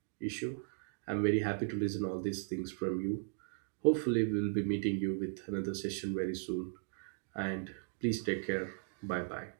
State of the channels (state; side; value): silent; left; digital silence